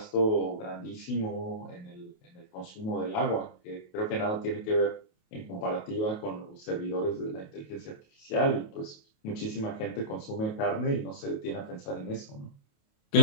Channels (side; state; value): right; late; 28 ms